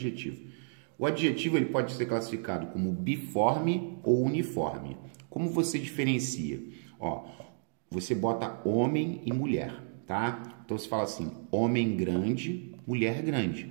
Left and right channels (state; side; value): silent; left; digital silence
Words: O adjetivo ele pode ser classificado como biforme ou uniforme. Como você diferencia? Ó, você bota homem e mulher, tá? Então você fala assim, homem grande, mulher grande.